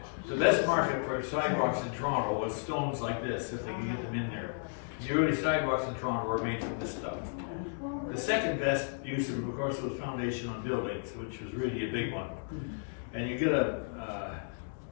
The best market for sidewalks in Toronto was stones like this, if they can get them in there. The early sidewalks in Toronto were made from this stuff. The second best use of course, was foundation on buildings, which was really a big one. And you get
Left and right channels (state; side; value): silent; right; digital silence